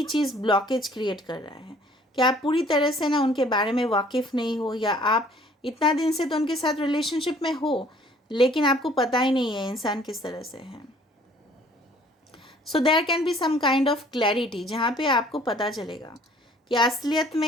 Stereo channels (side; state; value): both; normal; correlation 0.56